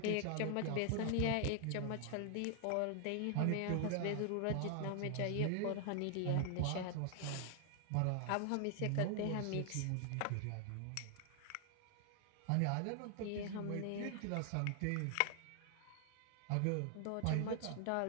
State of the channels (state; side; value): different; both; correlation 0.00